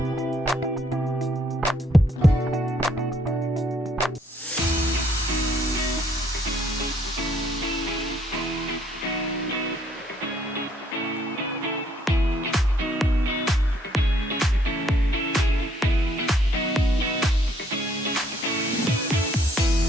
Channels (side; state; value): both; normal; correlation 0.67